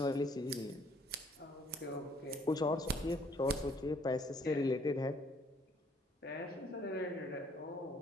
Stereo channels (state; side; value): normal; both; correlation 0.63